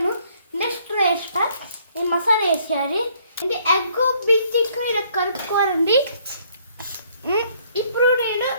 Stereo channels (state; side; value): inverted; both; correlation -0.64